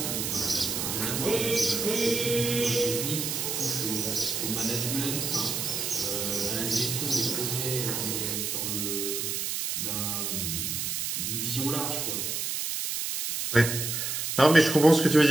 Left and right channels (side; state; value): right; noise; hiss, 2 dB below the sound